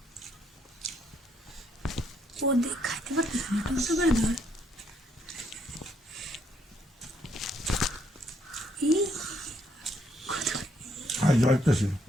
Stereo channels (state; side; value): normal; both; correlation 0.72